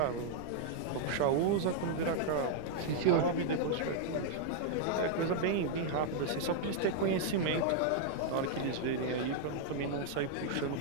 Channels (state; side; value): different; both; correlation -0.01